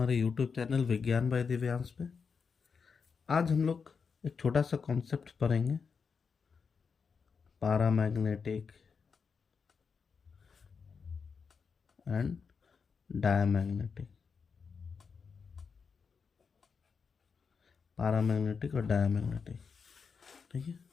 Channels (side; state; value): right; quieter; 5.7 dB